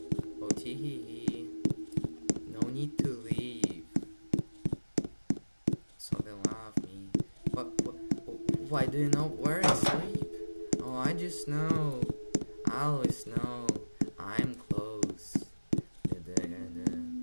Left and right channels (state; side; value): inverted; both; correlation -1.00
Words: Oh, tee. No need to leave. So they love me. Why do you know where I sleep? Oh, I just know. I always know. I'm close.